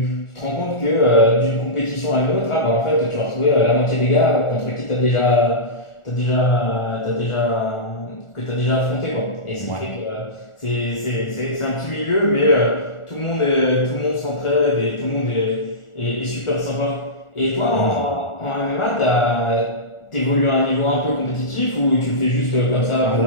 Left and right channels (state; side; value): late; right; 1.4 ms